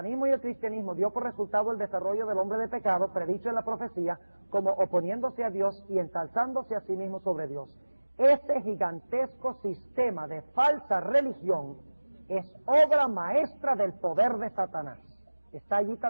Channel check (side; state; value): both; inverted; correlation -1.00